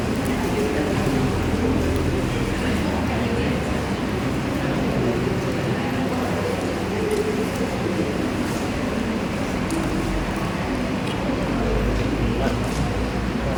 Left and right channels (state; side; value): identical; both; correlation 1.00